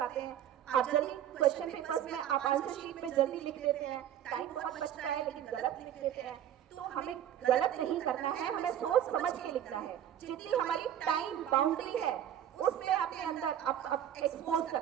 हैं, आप जल्दी क्वेश्चन पेपर्स में आप आंसर शीट में जल्दी लिख देते हैं, टाइम बहुत बचता है लेकिन गलत लिख देते हैं। तो हमें गलत नहीं करना है, हमें सोच समझ के लिखना है। जितनी हमारी टाइम बाउंड्री है उस पे अपने अंदर एक्सपोज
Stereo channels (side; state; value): left; quieter; 10.7 dB